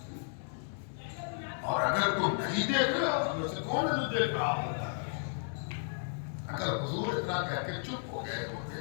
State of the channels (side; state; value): right; silent; 55 dB below the other